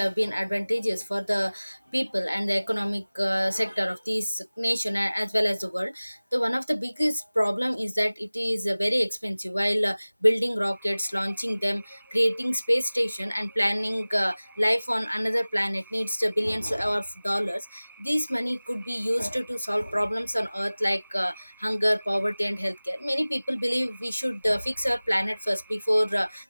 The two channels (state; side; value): inverted; both; correlation -0.99